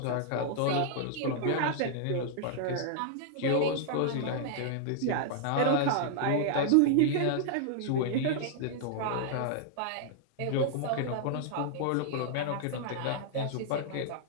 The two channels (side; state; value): both; different; correlation -0.01